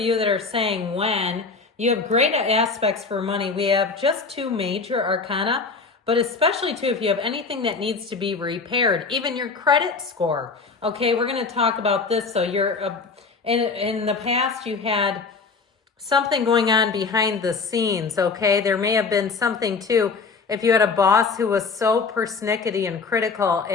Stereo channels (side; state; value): right; quieter; 4.6 dB